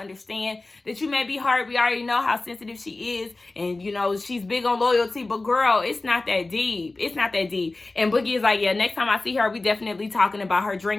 that you may be hurt. We already know how sensitive she is, and she's big on loyalty. But girl, it's not that deep. It's not that deep. And Boogie is like, yeah, next time I see her, we definitely talking about her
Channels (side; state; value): right; quieter; 3.2 dB